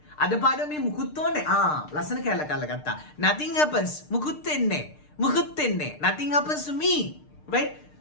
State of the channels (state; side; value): late; right; 6.6 ms